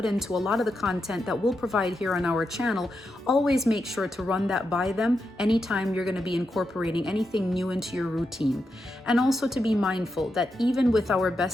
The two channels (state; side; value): normal; both; correlation 0.86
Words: into a lot of the content that we'll provide here on our channel, always make sure to run that by them anytime you're going to be incorporating anything new into your routine. And also to be mindful that even with our